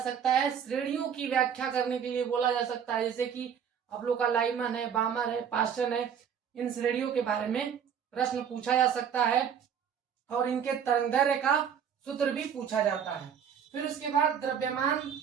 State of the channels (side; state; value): left; quieter; 8.0 dB